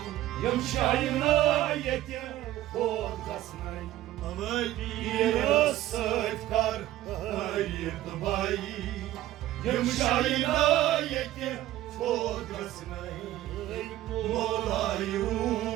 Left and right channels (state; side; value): quieter; left; 14.5 dB